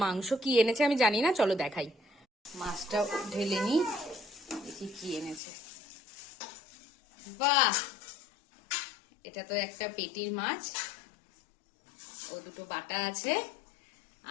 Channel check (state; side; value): drops out; right; at 5.4 s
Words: মাংস কি এনেছে আমি জানি না, চলো দেখাই। মাছটা ঢেলে নি, দেখি কি এনেছে। বাহ, এটা তো একটা পেটির মাছ, ও দুটো বাটা আছে,